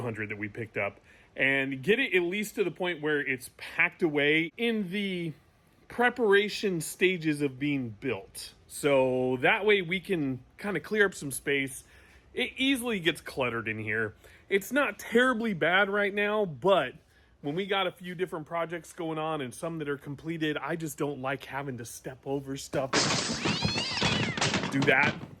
that we picked up and get it at least to the point where it's packed away in the preparation stages of being built. So that way we can kind of clear up some space. It easily gets cluttered in here. It's not terribly bad right now, but when we got a few different projects going on and some that are completed, I just don't like having to step over stuff. Do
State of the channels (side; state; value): both; identical; correlation 1.00